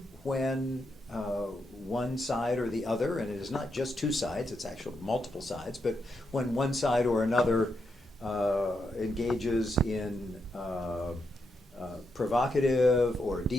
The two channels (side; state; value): both; normal; correlation 0.82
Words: when one side or the other, and it is not just two sides, it's actually multiple sides, but when one side or another engages in provocative or